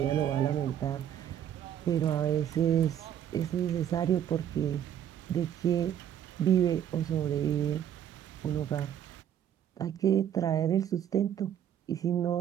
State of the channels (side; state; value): left; quieter; 10.0 dB